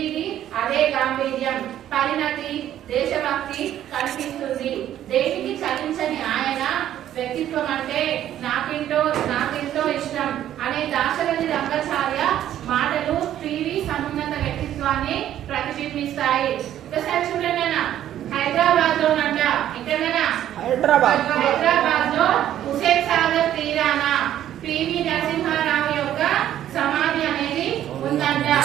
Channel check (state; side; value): quieter; left; 11.6 dB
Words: అదే గాంభీర్యం, పరిణతి, దేశభక్తి కనిపిస్తుంది. దేనికి చలించని ఆయన వ్యక్తిత్వం అంటే నాకెంతో ఇష్టం అనే దాశరథి రంగాచార్య మాటలు పివి సమున్నత వ్యక్తిత్వాన్ని ప్రతిబింబిస్తాయి. ఒకసారి చూడండి, హైదరాబాద్ లోనంట హైదరాబాద్ లో హుస్సేన్ సాగర్ తీరాన పివి నరసింహారావు యొక్క సమాధి అనేది ఉందంట.